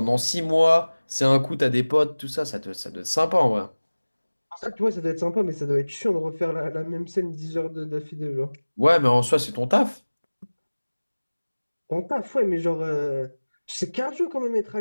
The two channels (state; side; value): inverted; both; correlation -1.00